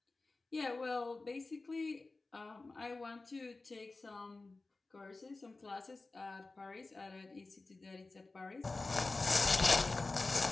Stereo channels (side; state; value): right; quieter; 3.4 dB